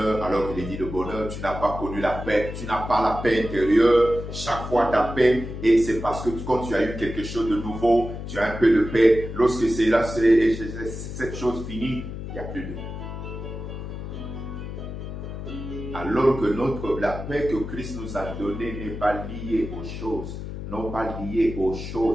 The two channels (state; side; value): noise; left; hum, 8 dB below the sound